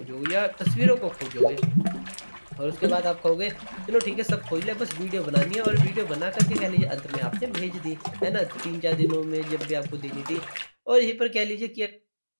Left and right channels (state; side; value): inverted; both; correlation -1.00